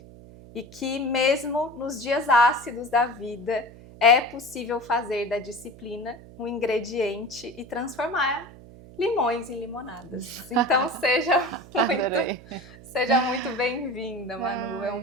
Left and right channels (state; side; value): noise; right; hum, 19 dB below the sound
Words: E que mesmo nos dias ácidos da vida é possível fazer da disciplina um ingrediente e transformar limões em limonadas. Então seja muito bem-vinda, Manu. É um